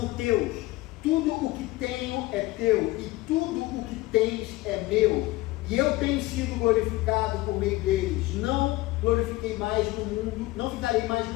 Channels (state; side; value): quieter; right; 19.4 dB